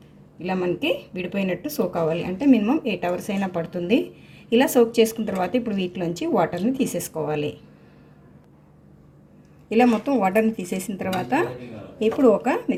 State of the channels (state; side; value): identical; both; correlation 1.00